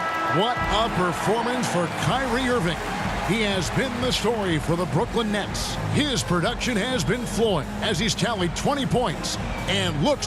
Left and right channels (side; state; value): both; identical; correlation 1.00